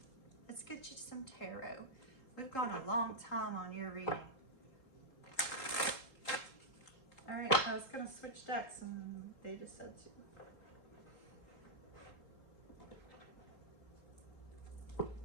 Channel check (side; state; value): right; late; 3.8 ms